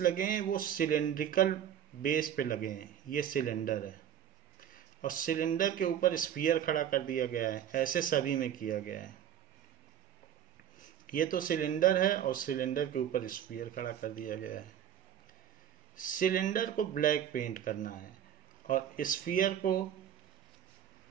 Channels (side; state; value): left; quieter; 9.9 dB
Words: लगे हैं वो सिलेंड्रिकल बेस पे लगे हैं. ये सिलेंडर है और सिलेंडर के ऊपर स्फीयर खड़ा कर दिया गया है. ऐसे सभी में किया गया है. ये तो सिलेंडर है और सिलेंडर के ऊपर स्फीयर खड़ा कर दिया गया है. सिलेंडर को ब्लैक पेंट करना है और स्फीयर को